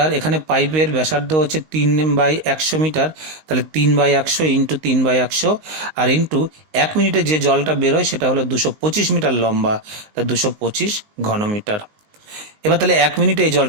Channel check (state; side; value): late; left; 19 ms